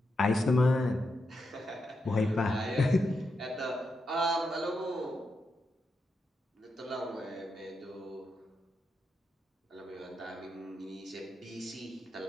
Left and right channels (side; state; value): both; normal; correlation 0.85